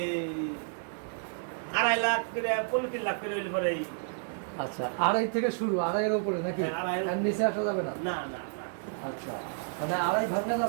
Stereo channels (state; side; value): silent; left; 55 dB below the other